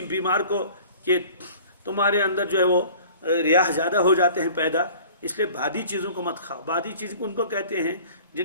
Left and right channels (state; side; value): inverted; both; correlation -0.47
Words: بیمار کو کہ تمہارے اندر جو ہے وہ ریاح زیادہ ہو جاتے ہیں پیدا، اس لیے بادی چیزوں کو مت کھاؤ۔ بادی چیز ان کو کہتے ہیں